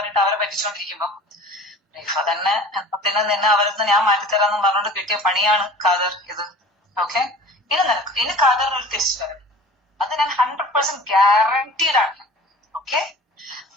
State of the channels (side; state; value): both; normal; correlation 0.43